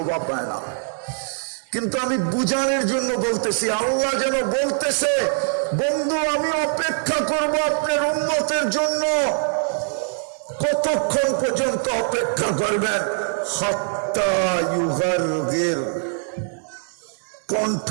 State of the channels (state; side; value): silent; left; digital silence